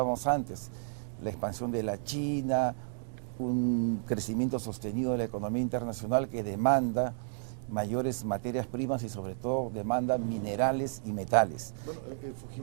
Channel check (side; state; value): left; silent; digital silence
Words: antes, la expansión de la China, un crecimiento sostenido de la economía internacional que demanda mayores materias primas y sobre todo demanda minerales y metales. Bueno,